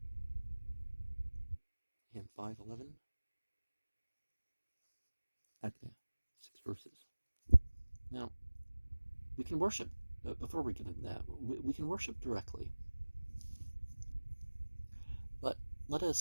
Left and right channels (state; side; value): inverted; both; correlation -1.00